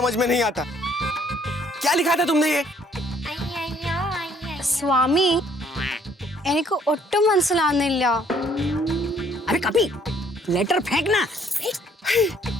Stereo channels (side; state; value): both; normal; correlation 0.63